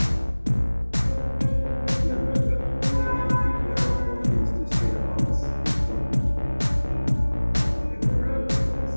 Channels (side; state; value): both; inverted; correlation -1.00